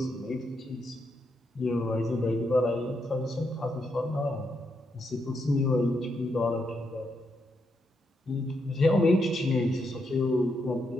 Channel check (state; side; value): normal; both; correlation 0.80